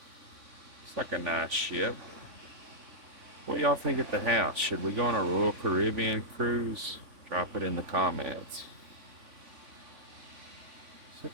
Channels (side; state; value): left; late; 3.5 ms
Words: It's like a nice ship. What do y'all think at the house? Should we go on a Royal Caribbean cruise? Drop it in the comments.